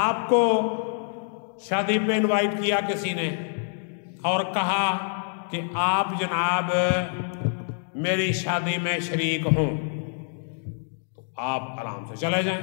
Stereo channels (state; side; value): silent; right; digital silence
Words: शादी पे इनवाइट किया किसी ने और कहा कि आप जनाब मेरी शादी में शरीक हों, तो आप आराम से चले जाएं,